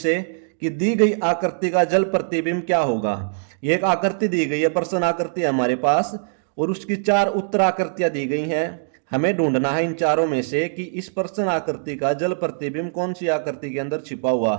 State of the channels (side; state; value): left; silent; digital silence